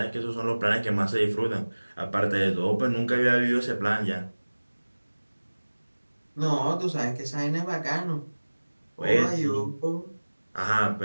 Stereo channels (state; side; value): inverted; both; correlation -1.00